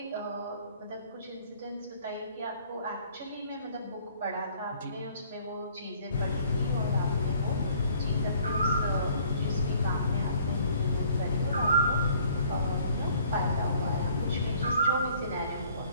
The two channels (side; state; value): both; inverted; correlation -0.57